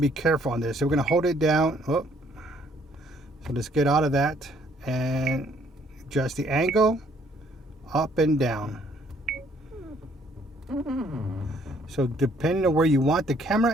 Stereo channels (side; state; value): both; normal; correlation 0.64